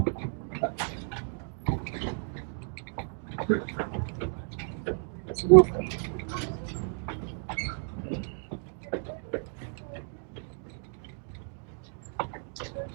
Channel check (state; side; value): silent; left; 57 dB below the other